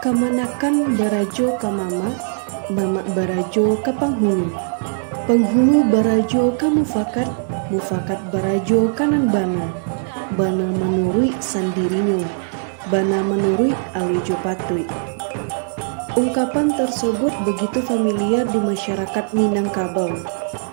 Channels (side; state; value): left; silent; 66 dB below the other